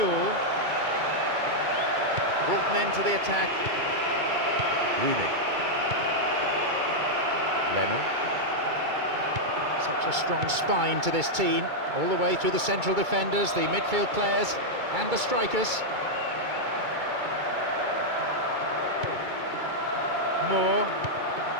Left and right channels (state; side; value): late; left; 2.3 ms